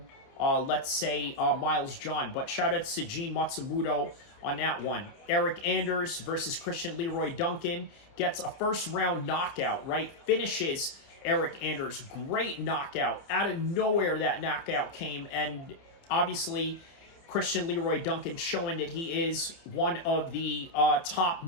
let's say, Miles John. But shout out to Gene Matsumoto on that one. Eric Anders versus Christian Leroy Duncan gets a first-round knockout, right? Finishes Eric Anders. Great knockout. Out of nowhere that knockout came, and obviously Christian Leroy Duncan showing that he is one of the top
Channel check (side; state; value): right; late; 29 ms